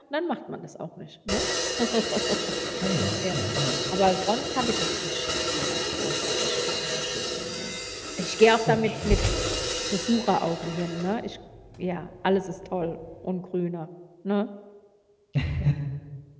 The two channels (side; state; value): both; identical; correlation 1.00